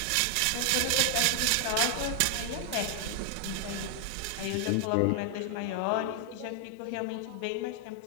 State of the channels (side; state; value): both; different; correlation 0.00